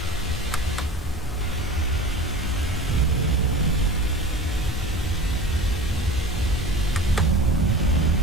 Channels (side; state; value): both; normal; correlation 0.37